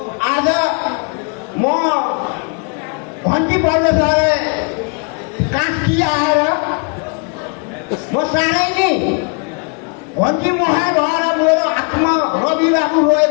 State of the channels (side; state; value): right; quieter; 36.6 dB